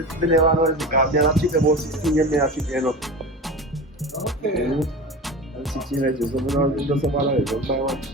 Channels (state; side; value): normal; both; correlation 0.30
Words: never know this because I keep about 16 years, I keep you know. Okay. I'm 16 years, so I don't just about it. Don't buy one to you